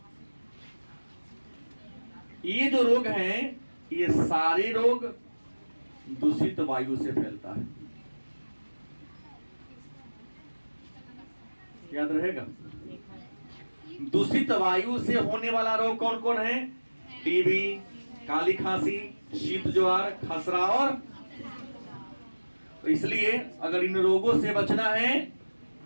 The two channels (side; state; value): both; inverted; correlation -1.00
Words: ये जो रोग हैं, ये सारे रोग दूषित वायु से फैलता है, याद रहेगा। दूषित वायु से होने वाला रोग कौन कौन है, टीबी, काली खांसी, शीत ज्वार, खसरा और। तो इसलिए अगर इन रोगों से बचना है